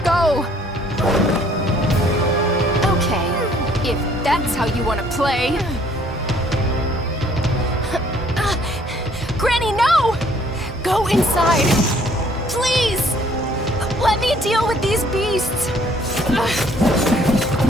go! Okay, if that's how you want to play. Granny, no! Go inside! Please! Let me deal with these beasts!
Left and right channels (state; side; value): normal; both; correlation 0.61